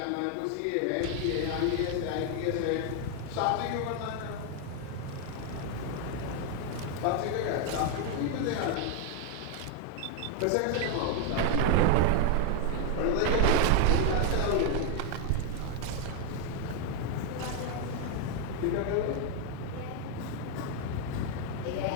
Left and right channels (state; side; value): different; both; correlation 0.00